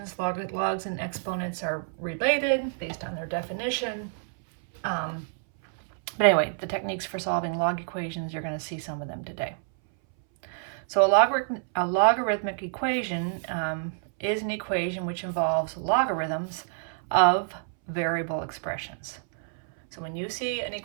Logs and exponents are related based on their definition. But anyway, the techniques for solving log equations, you're going to see some of them today. So a logarithmic equation is an equation which involves logarithms of variable expressions. So when you see an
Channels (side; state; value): left; silent; 59 dB below the other